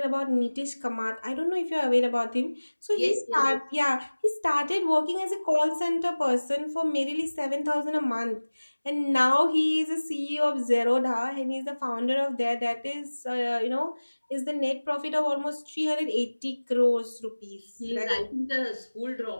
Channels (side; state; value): both; inverted; correlation -1.00